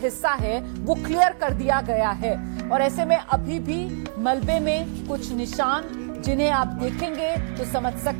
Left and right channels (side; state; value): left; silent; digital silence